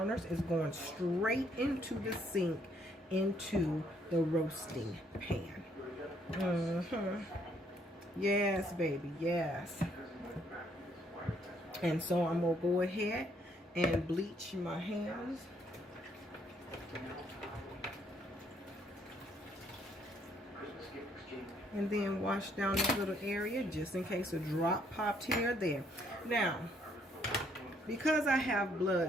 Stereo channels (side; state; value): both; normal; correlation 0.68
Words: It's going straight into the sink, into the roasting pan. Yes, baby, yes. And so I'm going to go ahead and bleach my hands. And then wash down this little area just in case a drop popped here or there. Now, because I have